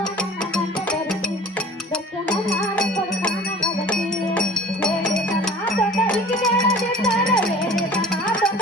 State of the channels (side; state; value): both; normal; correlation 0.45